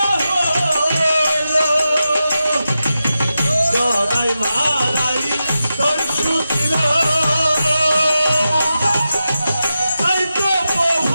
হলো জগাই মাদাই তোর সুছিল তাই তো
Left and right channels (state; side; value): inverted; both; correlation -0.90